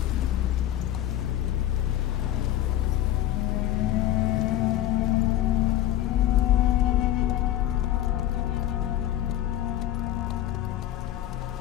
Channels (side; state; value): right; quieter; 13.0 dB